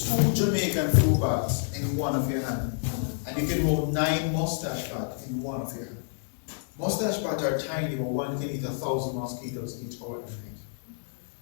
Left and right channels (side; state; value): right; silent; digital silence